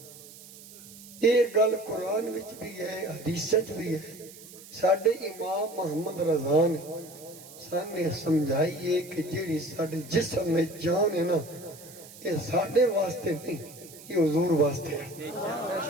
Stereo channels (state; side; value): noise; right; hiss, 18 dB below the sound